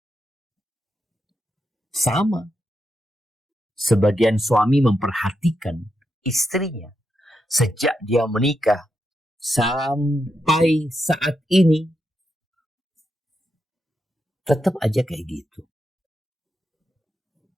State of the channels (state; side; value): normal; both; correlation 0.84